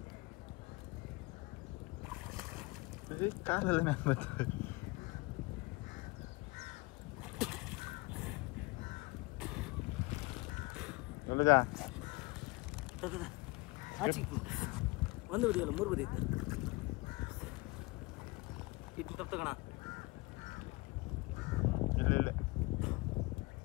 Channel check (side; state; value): right; quieter; 23.7 dB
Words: ಕಾಲೆಲ್ಲ ಮ್ಯಾಲೆ ಬರ್ತದೆ ಒಳ್ಳೆದಾ ಒಂದು ಬದಿ ಅಲ್ಲ 3 ಬದಿ ಇತ್ತು ಇಟ್ಟು ತಪ್ಪು ತಗೋಣ ಇಲ್ಲ